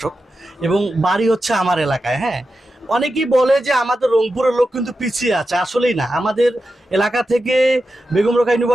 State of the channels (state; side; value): normal; both; correlation 0.90